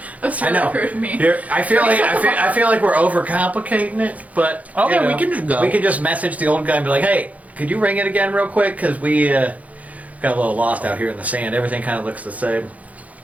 That's I really know. rude of me. I feel like we're overcomplicating it, but Okay, you know, we can just go. We can just message the old guy and be like, "Hey, could you ring it again real quick? Because we got a little lost out here in the sand. Everything kind of looks the same."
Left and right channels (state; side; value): late; left; 0.071 ms